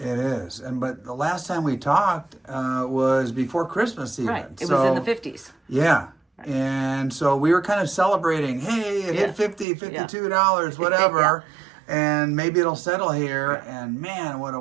is, but the last time we talked was before Christmas even. Right. It was in the 50s. Yeah. And so we were kind of celebrating, hey, it hit $50, $52, whatever, and maybe it'll settle here. And man, what a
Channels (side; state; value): left; drops out; at 9.7 s